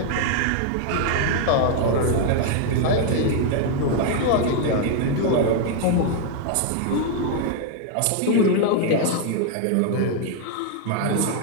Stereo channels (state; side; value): different; both; correlation 0.00